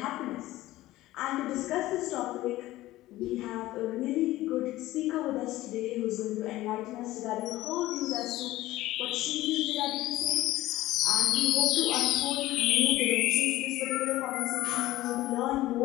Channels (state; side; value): quieter; right; 16.6 dB